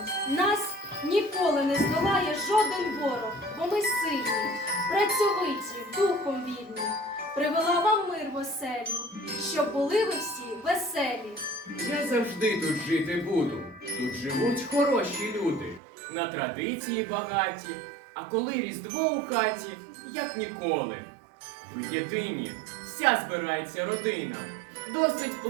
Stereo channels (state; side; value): drops out; left; at 15.8 s